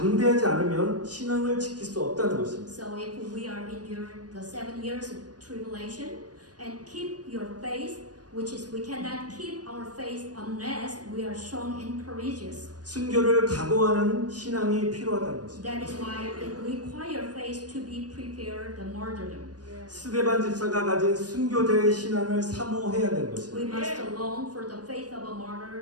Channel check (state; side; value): late; left; 0.69 ms